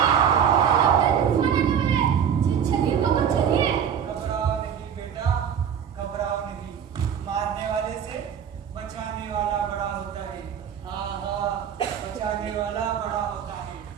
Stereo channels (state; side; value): quieter; left; 8.2 dB